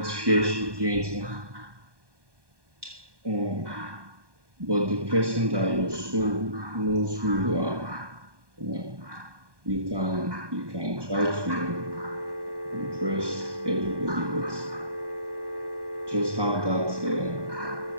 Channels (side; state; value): left; late; 1.2 ms